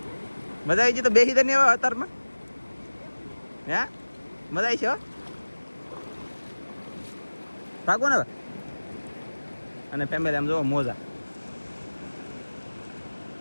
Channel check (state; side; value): inverted; both; correlation -1.00